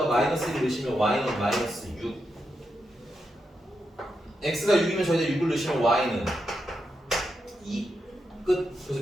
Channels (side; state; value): both; normal; correlation 0.85